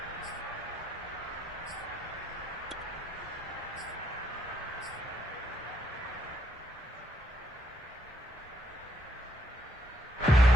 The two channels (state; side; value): normal; both; correlation 0.75